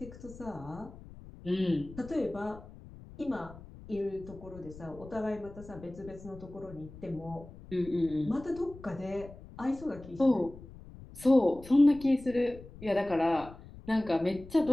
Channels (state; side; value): noise; left; rumble, 17 dB below the sound